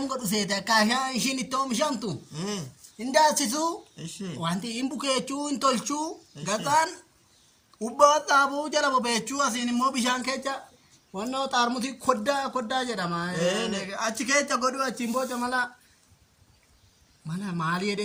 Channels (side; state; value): both; identical; correlation 1.00